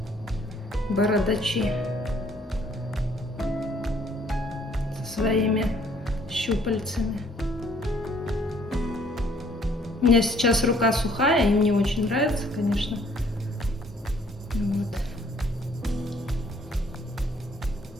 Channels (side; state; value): both; normal; correlation 0.62